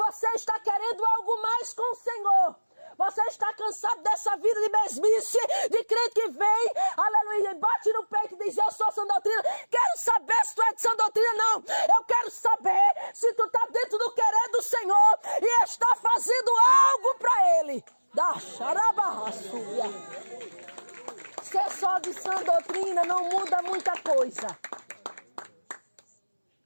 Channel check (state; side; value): inverted; both; correlation -1.00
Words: está querendo algo mais com o Senhor. Você está cansado dessa vida de mesmice, de crente que vem, aleluia, bate no peito e diz, eu sou sã doutrina. Quero saber se tu é de sã doutrina, não. Eu quero saber se tu está dentro do querer do Senhor e está fazendo algo para Ele. Da xarabarraçúria. Ser só de sã doutrina não muda muita coisa.